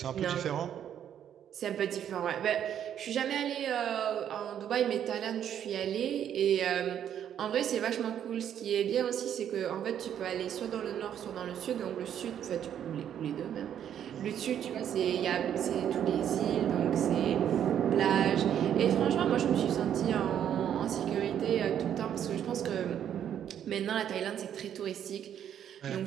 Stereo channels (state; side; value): quieter; left; 9.6 dB